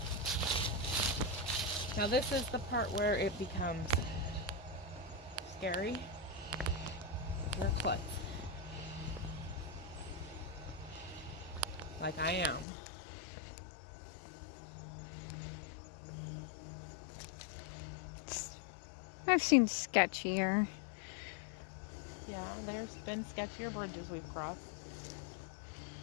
Now this is the part where it becomes scary. Wear clutch. Like I am. I've seen sketchier. Yeah, there's been sketchier bridges we've crossed.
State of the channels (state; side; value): drops out; right; at 12.7 s